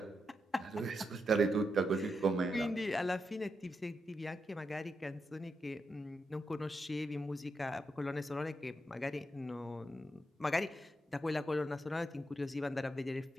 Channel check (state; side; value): normal; both; correlation 0.85